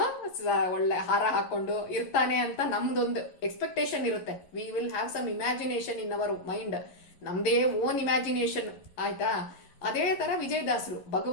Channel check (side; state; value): right; late; 11 ms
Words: ಒಳ್ಳೆ ಹಾರ ಹಾಕೊಂಡು ಇರ್ತಾನೆ ಅಂತ ನಮ್ದೊಂದು ಎಕ್ಸ್ಪೆಕ್ಟೇಷನ್ ಇರುತ್ತೆ. We will have some imagination in our mind, ನಮ್ದೇ ಓನ್ ಇಮ್ಯಾಜಿನೇಷನ್ ಆಯ್ತಾ. ಅದೇ ತರ ವಿಜಯದಾಸರು